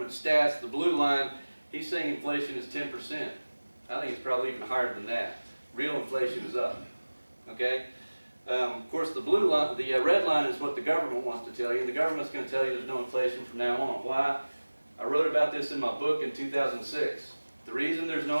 Stats. The blue line, he's saying inflation is 10%. I think it's probably even higher than that. Real inflation is up, okay? Of course, the blue line, the red line is what the government wants to tell you, and the government's going to tell you there's no inflation from now on. Why? I wrote about this in my book in 2006. The reason there's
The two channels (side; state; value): both; inverted; correlation -1.00